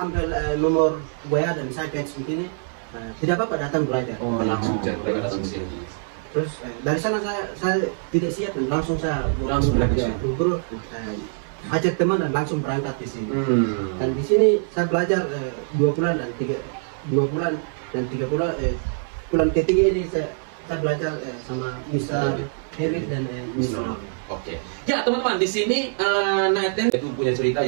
ambil nomor WA dan saya catch begini, tidak apa-apa datang belajar. Langsung mereka datang ke sini. Terus dari sana saya tidak siap dan langsung belajar. Buru-buru ajak teman dan langsung berangkat di sini. Dan di sini saya belajar 2 bulan dan 3 bulan. Bulan ketiga ini saya belajar sama Mr. Eric dan Mr. Oke. Ya teman-teman, di sini Nathan itu punya cerita,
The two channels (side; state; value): left; silent; 63 dB below the other